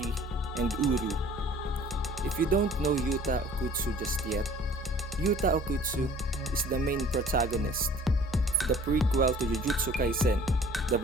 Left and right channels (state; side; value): normal; both; correlation 0.50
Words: and Uru. If you don't know Yuta Okkutsu just yet, Yuta Okkutsu is the main protagonist of the prequel to Jujutsu Kaisen, the